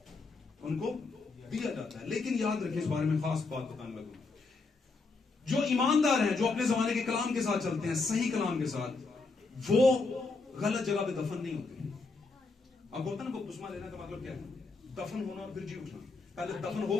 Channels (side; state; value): right; quieter; 3.9 dB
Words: उनको दिया जाता है। लेकिन याद रखें, इस बारे में खास बात बताने लगूं, जो ईमानदार हैं, जो अपने जमाने के कलाम के साथ चलते हैं, सही कलाम के साथ, वो गलत जगह पे दफन नहीं होते। अब होता ना बपतिस्मा लेने का मतलब क्या है? दफन होना और फिर जी उठना। पहले दफन